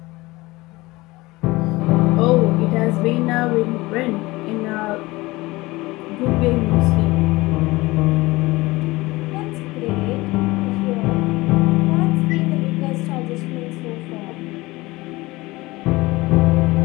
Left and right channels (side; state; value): right; quieter; 20.9 dB